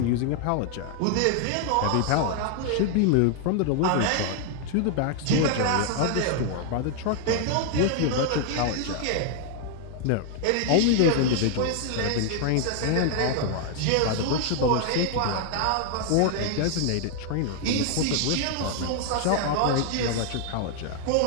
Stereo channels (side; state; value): both; different; correlation 0.00